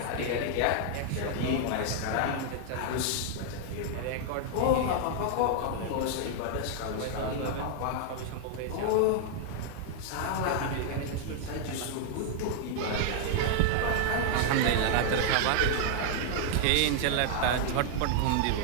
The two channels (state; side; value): different; both; correlation -0.01